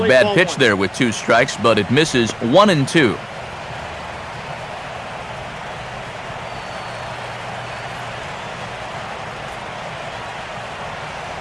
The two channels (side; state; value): both; identical; correlation 1.00